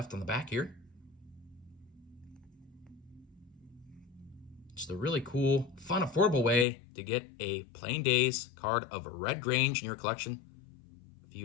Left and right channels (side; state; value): right; drops out; at 6.7 s